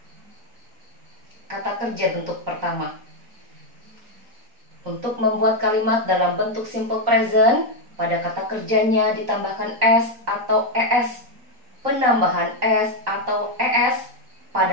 Kata kerja bentuk pertama. Untuk membuat kalimat dalam bentuk simple present, pada kata kerjanya ditambahkan s atau es. Penambahan s atau es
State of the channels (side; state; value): left; late; 3.9 ms